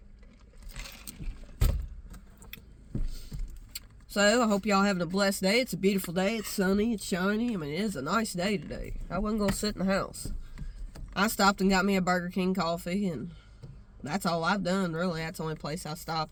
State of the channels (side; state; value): both; identical; correlation 1.00